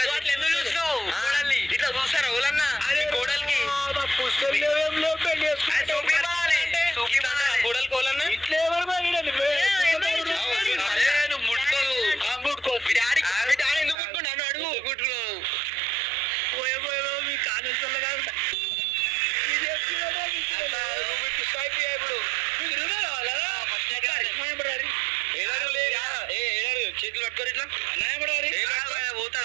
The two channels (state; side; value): drops out; left; at 14.0 s